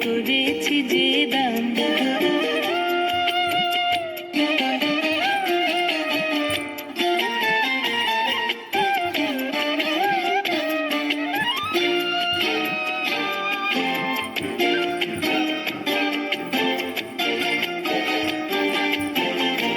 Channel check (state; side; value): identical; both; correlation 1.00